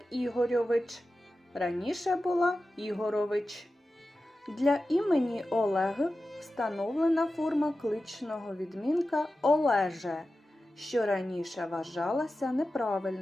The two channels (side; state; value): both; normal; correlation 0.93